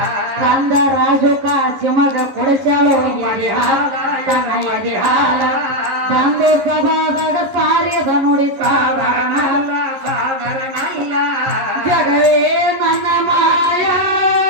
ಕಂದ ರಾಜು ಕಾಶಿಮಗ ಕೊಡಿಸಾಳು ತನ್ನ ಎದೆ ಹಾಲ ತಂದೆ ಸಭಾದಾಗ ಸಾರಿದ ನುಡಿ ಸಾಧಾರಣ ಜಗವೇ ನನ್ನ ಮಾಯ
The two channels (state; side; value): late; left; 11 ms